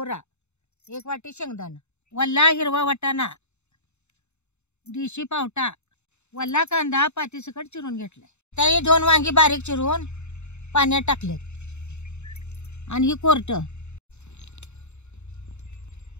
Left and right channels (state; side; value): late; right; 0.82 ms